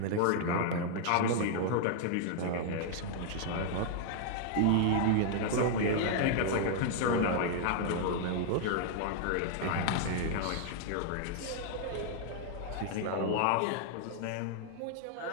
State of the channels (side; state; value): both; different; correlation -0.01